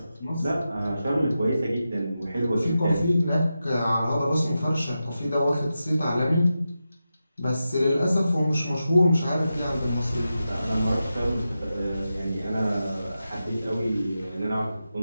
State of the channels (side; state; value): both; inverted; correlation -0.91